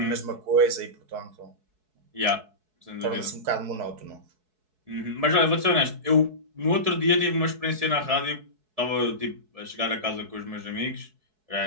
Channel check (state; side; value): late; left; 4.6 ms